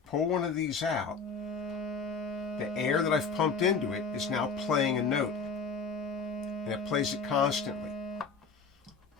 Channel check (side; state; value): right; quieter; 4.8 dB